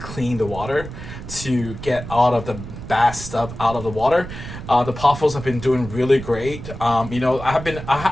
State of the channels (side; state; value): right; noise; rumble, 11 dB below the sound